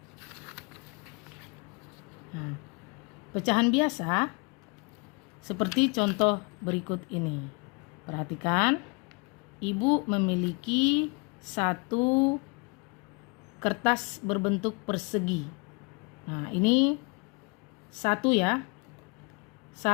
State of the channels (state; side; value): quieter; right; 31.8 dB